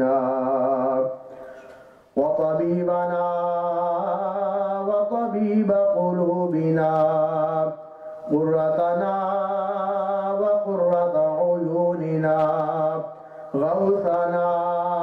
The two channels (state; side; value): identical; both; correlation 1.00